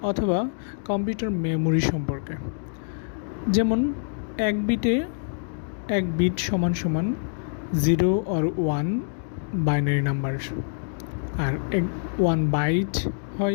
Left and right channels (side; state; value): right; silent; digital silence